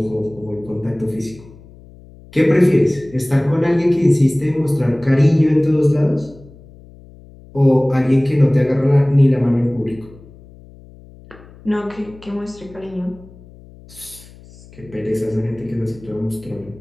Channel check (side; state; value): left; noise; hum, 22 dB below the sound